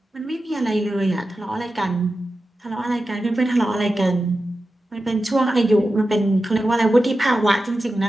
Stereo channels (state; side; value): normal; both; correlation 0.92